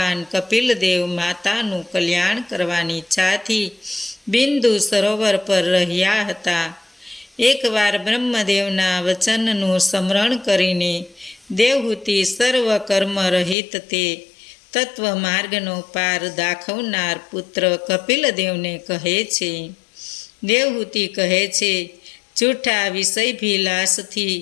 કપિલદેવ માતાનું કલ્યાણ કરવાની ઈચ્છાથી બિંદુ સરોવર પર રહ્યા હતા. એકવાર બ્રહ્મદેવના વચનનું સ્મરણ કરીને દેવહૂતિ સર્વ કર્મ રહિત તે તત્વ માર્ગનો પાર દાખવનાર પુત્ર કપિલદેવને કહે છે. દેવહૂતિ કહે છે, જૂઠા વિષયભિલાષથી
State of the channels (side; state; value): right; drops out; at 13.6 s